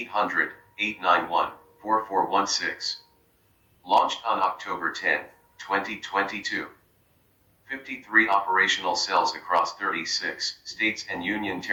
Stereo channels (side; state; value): both; identical; correlation 1.00